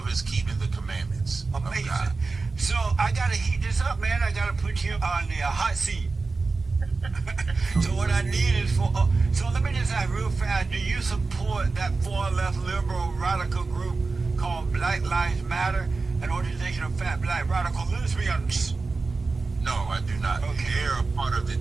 is keeping the commandments. Amazing. Of God. So I gotta heat this up, man. I gotta put you on the hot seat. So what I need is so let me just ask real fast. Do you support that far left liberal radical group called Black Lives Matter, an organization of fat black radical lesbians? No, I do not. Okay. They're a part of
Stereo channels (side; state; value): left; quieter; 4.0 dB